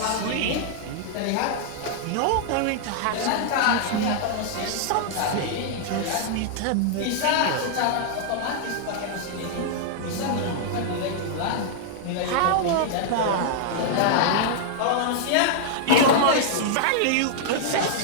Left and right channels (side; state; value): both; different; correlation -0.01